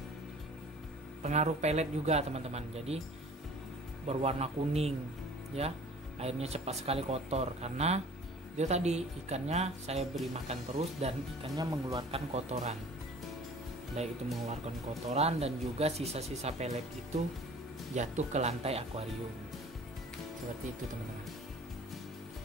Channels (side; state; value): both; normal; correlation 0.46